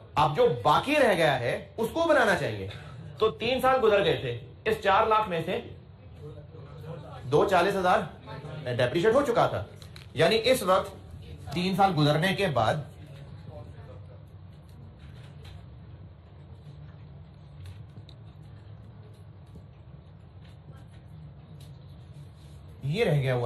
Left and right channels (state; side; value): identical; both; correlation 1.00